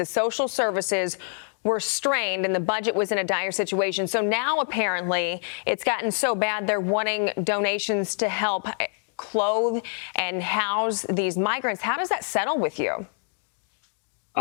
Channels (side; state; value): right; silent; 61 dB below the other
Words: social services were strained and the budget was in a dire situation. So now apparently it's gotten so bad they're wanting donations to help clothe and house these migrants. How does that settle with you?